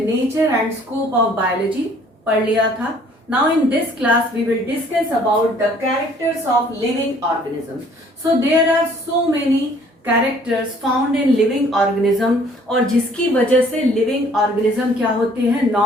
and scope of biology पढ़ लिया था. Now in this class we will discuss about the characters of living organisms. So there are so many characters found in living organism और जिसकी वजह से लिविंग ऑर्गेनिज्म क्या होते हैं,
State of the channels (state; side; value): normal; both; correlation 0.58